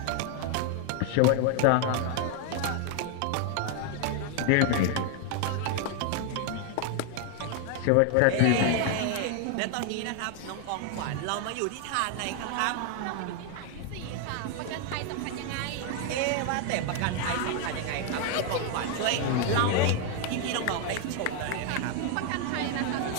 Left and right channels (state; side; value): different; both; correlation 0.01